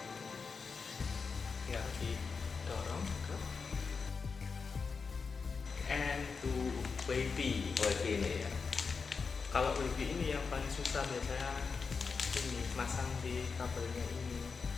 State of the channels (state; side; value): quieter; right; 5.1 dB